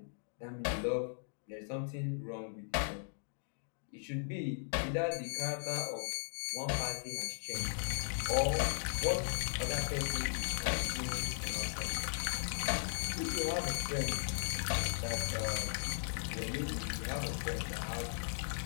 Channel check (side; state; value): right; silent; digital silence